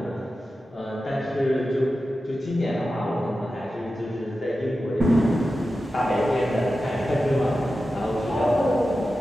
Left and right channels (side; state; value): both; normal; correlation 0.93